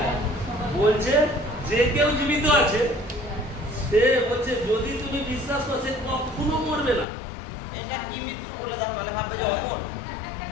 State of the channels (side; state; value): right; drops out; at 7.1 s